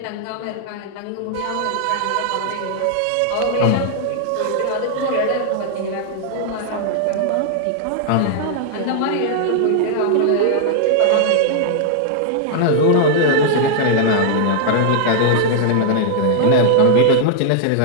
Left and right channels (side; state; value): both; different; correlation -0.01